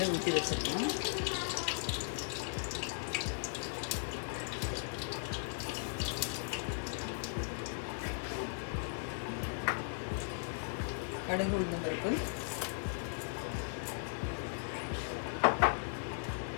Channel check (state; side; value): silent; right; digital silence